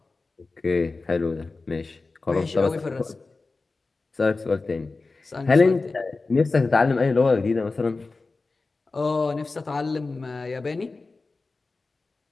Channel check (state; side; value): quieter; right; 3.7 dB